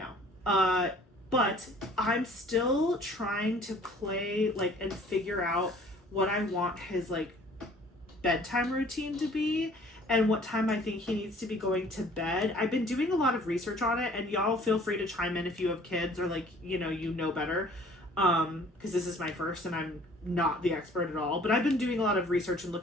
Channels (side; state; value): both; normal; correlation 0.53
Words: But I'm still trying to play like and figure out what I want his like bedtime routine to be and what time I think he needs to be going to bed. I've been doing a lot of research on it, and y'all feel free to chime in if you have kids or like you know better. Because this is my first and I'm not the expert at all, but I've been doing a lot of research and